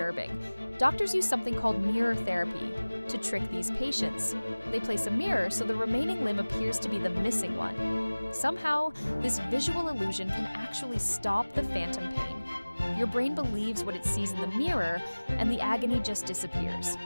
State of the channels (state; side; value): inverted; both; correlation -1.00